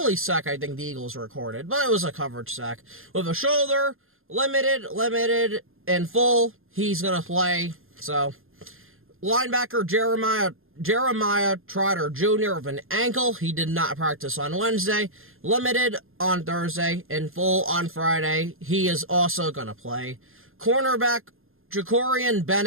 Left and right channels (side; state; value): left; late; 0.61 ms